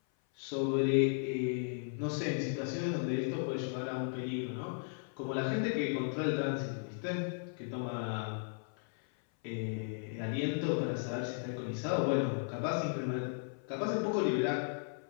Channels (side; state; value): right; silent; 54 dB below the other